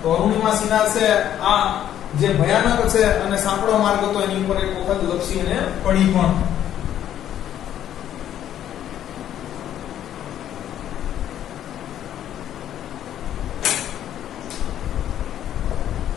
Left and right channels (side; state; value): right; quieter; 10.9 dB